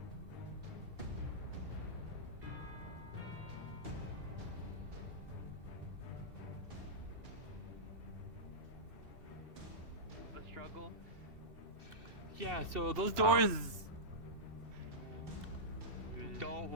The struggle. Yeah, so those doors don't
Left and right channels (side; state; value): left; late; 2.7 ms